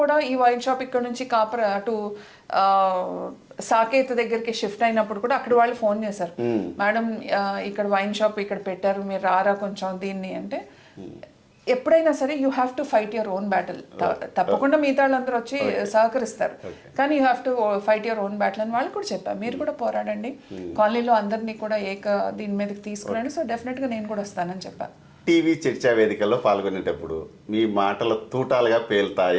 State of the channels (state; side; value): identical; both; correlation 1.00